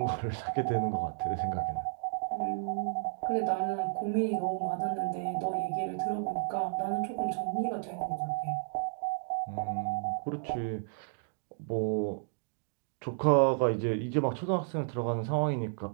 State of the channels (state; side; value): silent; left; digital silence